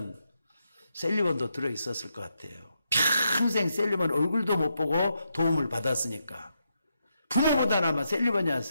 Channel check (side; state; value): both; inverted; correlation -0.82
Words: 셀리번도 들어있었을 것 같아요. 평생 셀리번 얼굴도 못 보고 도움을 받았으니까. 부모보다는 아마 셀리번이